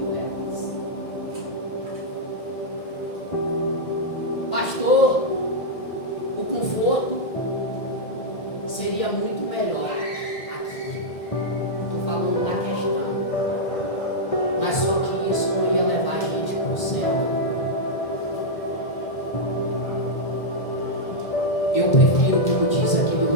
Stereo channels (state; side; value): late; right; 1.7 ms